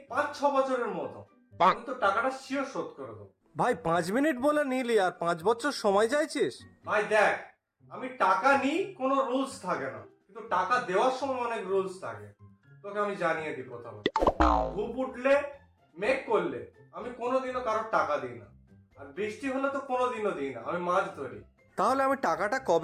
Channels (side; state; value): both; identical; correlation 1.00